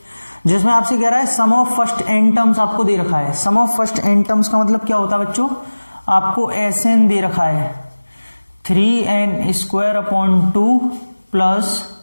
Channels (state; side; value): inverted; both; correlation -1.00